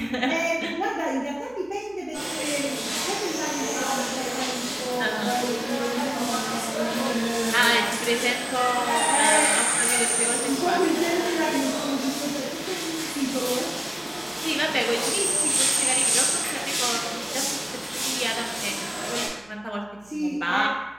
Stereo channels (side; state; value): right; noise; hum, 28 dB below the sound